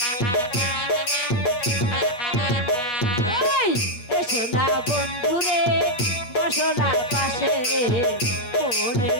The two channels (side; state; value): right; late; 8.2 ms